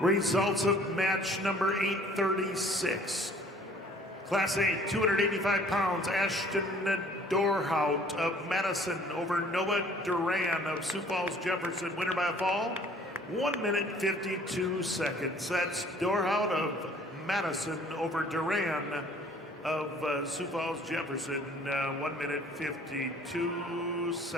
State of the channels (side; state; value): both; normal; correlation 0.55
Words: of match number 836. Class A, 285 pounds, Ashton Dorhout of Madison over Noah Duran of Sioux Falls Jefferson. Winner by a fall, 1 minute 52 seconds. That's Dorhout of Madison over Duran of Sioux Falls Jefferson. 1 minute 52